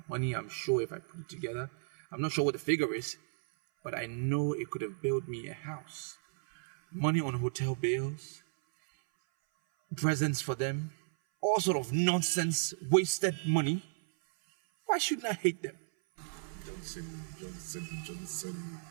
money, I'm sure if I put it together, I'm not sure what the figure is, but I know it could have built me a house. Money on hotel bills, presents for them, all sort of nonsense, wasted money. Why shouldn't I hate them? Johnson.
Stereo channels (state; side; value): silent; left; 55 dB below the other